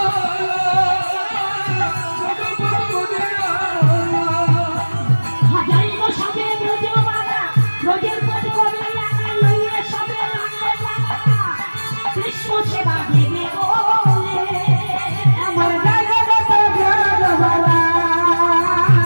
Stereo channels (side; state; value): both; inverted; correlation -1.00